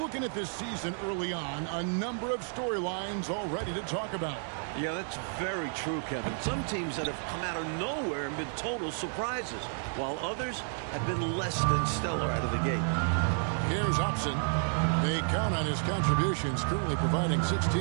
at this season early on, a number of storylines already to talk about. Yeah, that's very true, Kevin. Some teams that have come out of nowhere and been total surprises, while others have been less than stellar out of the gate. Here's Hobson. They count on his contributions, currently providing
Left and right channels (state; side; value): silent; left; 55 dB below the other